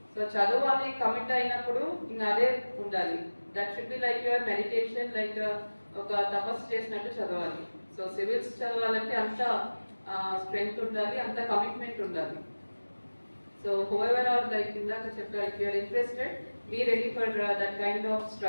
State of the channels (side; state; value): both; inverted; correlation -1.00